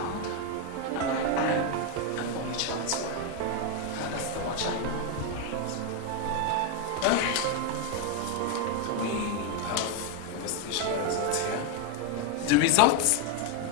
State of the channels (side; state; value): both; normal; correlation 0.01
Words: and I am an only child as well. That's the much I know. We have investigation results here. The results